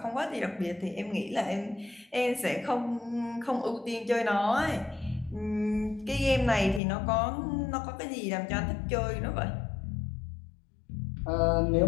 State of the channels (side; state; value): right; drops out; at 6.8 s